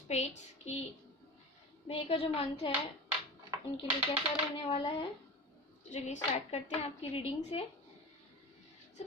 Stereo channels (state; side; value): normal; both; correlation 0.31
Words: की मई का जो मंथ है उनके लिए कैसा रहने वाला है। तो चलिए स्टार्ट करते हैं आपकी रीडिंग से।